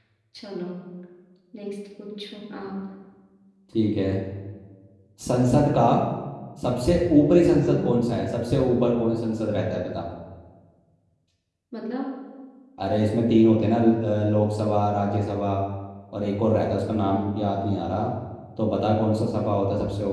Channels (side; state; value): both; identical; correlation 1.00